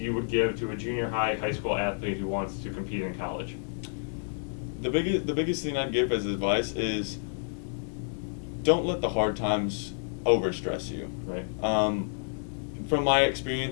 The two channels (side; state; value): right; silent; digital silence